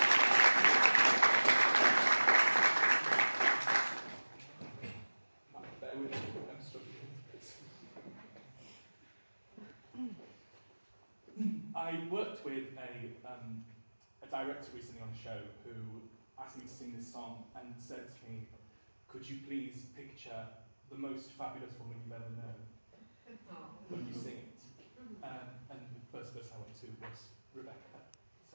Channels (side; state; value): both; inverted; correlation -1.00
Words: I worked with a director recently on the show who asked me to sing this song and said to me, could you please picture the most fabulous woman you've ever known when you sing it? And the first person I went to was Rebecca.